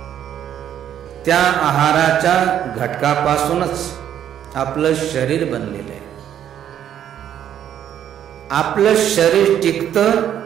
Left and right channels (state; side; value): quieter; left; 10.2 dB